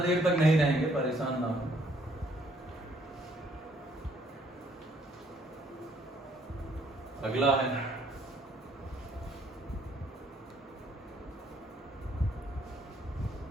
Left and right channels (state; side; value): normal; both; correlation 0.66